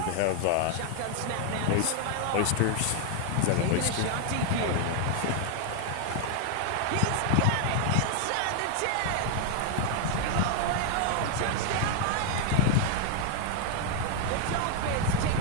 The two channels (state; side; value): different; both; correlation 0.00